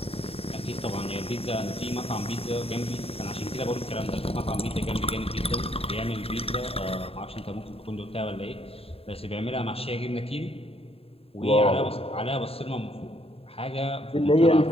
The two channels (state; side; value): late; right; 0.28 ms